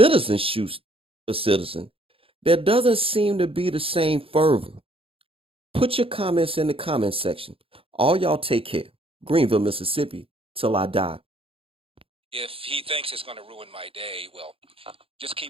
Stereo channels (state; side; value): late; left; 0.27 ms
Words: shoots a citizen, there doesn't seem to be the same fervor. Put your comments in the comment section. All y'all take care. Greenville, Mississippi, till I die. If he thinks it's going to ruin my day, well, just